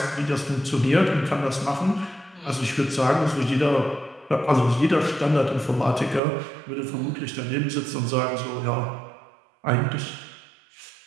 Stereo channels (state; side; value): drops out; left; at 6.2 s